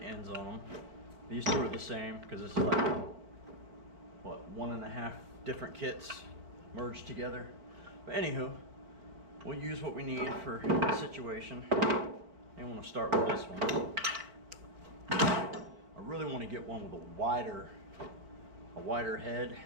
ends on them. These two are the same because this is like, what, 1.5 different kits merged together. But anywho, we'll use what we need for the situation. I want to start with this one. I really want to get one with a wider head.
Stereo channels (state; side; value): late; left; 4.4 ms